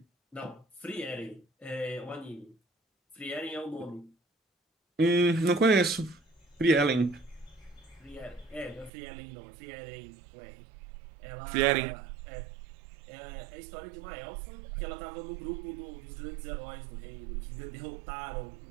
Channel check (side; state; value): left; drops out; at 8.9 s